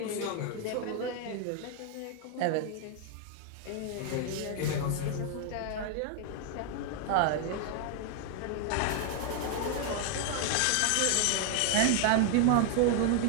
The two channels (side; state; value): both; different; correlation 0.00